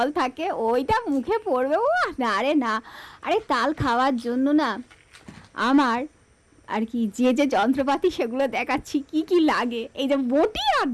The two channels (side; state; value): both; identical; correlation 1.00